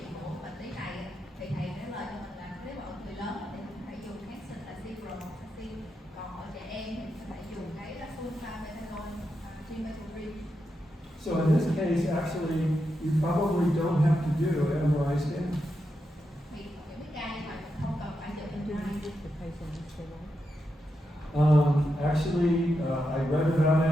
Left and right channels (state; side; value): normal; both; correlation 0.86